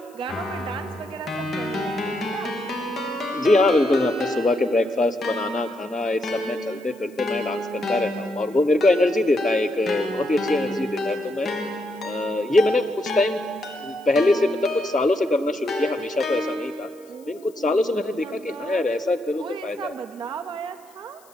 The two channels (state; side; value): noise; left; hiss, 29 dB below the sound